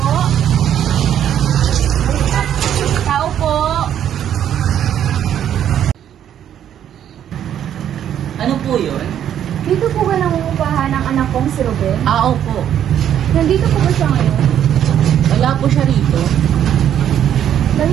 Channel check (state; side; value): quieter; left; 10.1 dB